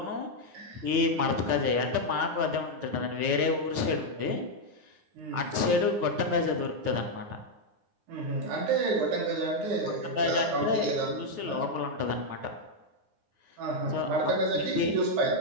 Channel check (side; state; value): left; late; 9.7 ms